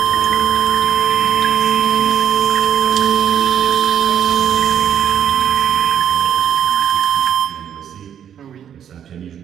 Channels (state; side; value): quieter; left; 9.2 dB